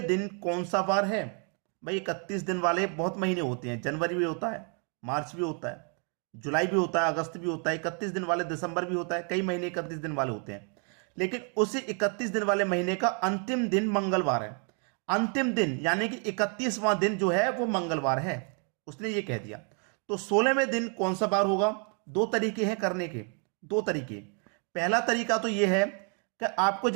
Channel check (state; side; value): quieter; left; 39.8 dB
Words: दिन कौन सा वार है? भाई 31 दिन वाले बहुत महीने होते हैं, जनवरी भी होता है, मार्च भी होता है, जुलाई भी होता है, अगस्त भी होता है। 31 दिन वाले दिसंबर भी होता है, कई महीने 31 दिन वाले होते हैं, लेकिन उसी 31 दिन वाले महीने का अंतिम दिन मंगलवार है। अंतिम दिन यानी कि 31वां दिन जो है वो मंगलवार है, उसने ये कह दिया। तो 16वें दिन कौन सा बार होगा? 2 तरीके हैं करने के, 2 तरीके। पहला तरीका तो ये है कि आपको